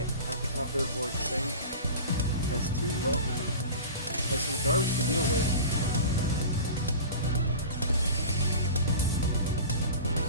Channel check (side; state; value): both; inverted; correlation -0.35